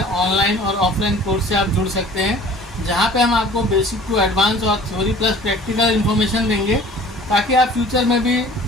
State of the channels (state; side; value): normal; both; correlation 0.47